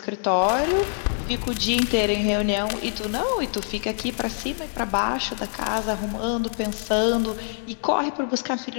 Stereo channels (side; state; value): right; silent; digital silence